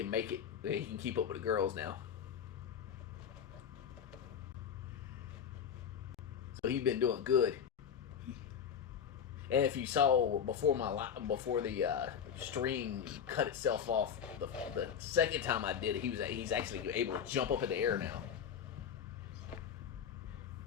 make it. He can keep up with the girls now. So he's been doing good. And if you saw before the string cut itself off, the second time I did it, he's actually able to jump up in the air now.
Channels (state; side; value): quieter; right; 7.8 dB